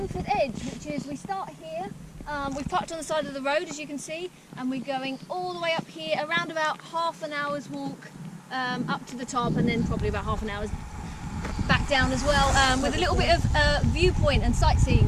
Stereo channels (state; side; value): identical; both; correlation 1.00